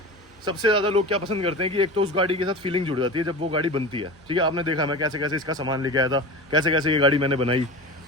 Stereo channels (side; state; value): both; normal; correlation 0.31